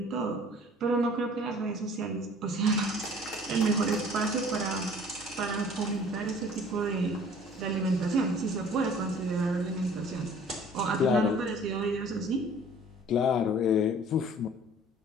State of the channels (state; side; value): normal; both; correlation 0.50